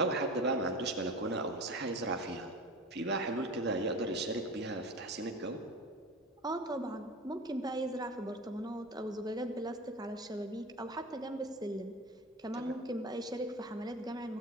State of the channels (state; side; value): normal; both; correlation 0.31